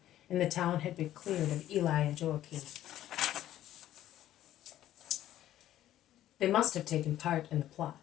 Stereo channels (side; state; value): right; quieter; 12.8 dB